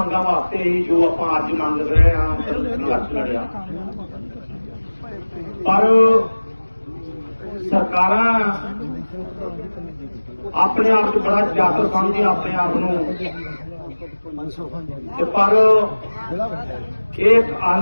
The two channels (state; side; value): inverted; both; correlation -1.00